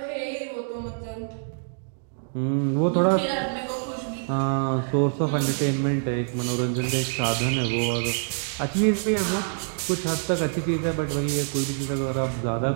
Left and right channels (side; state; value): left; silent; digital silence